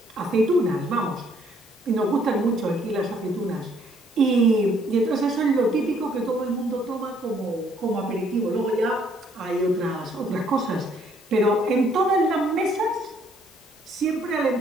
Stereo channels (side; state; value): both; normal; correlation 0.65